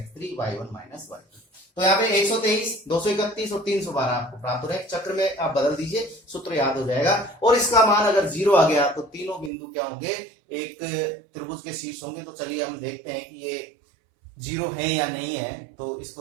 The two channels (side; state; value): left; drops out; at 9.5 s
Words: y1 minus y2। तो यहाँ पे 123 231 और 312 आपको प्राप्त हो रहा है। चक्र में आप बदल दीजिए, सूत्र याद हो जाएगा। और इसका मान अगर 0 आ गया तो तीनों बिंदु क्या होंगे, एक त्रिभुज के शीर्ष होंगे। तो चलिए हम देखते हैं कि ये 0 है या नहीं है। तो